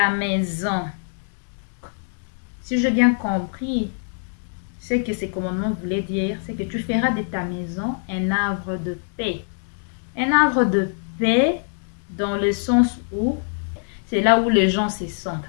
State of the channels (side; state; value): right; silent; 63 dB below the other